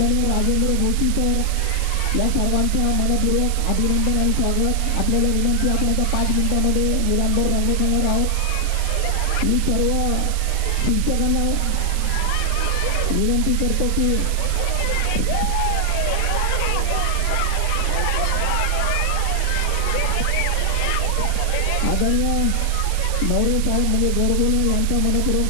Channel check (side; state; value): right; noise; hiss, 11 dB below the sound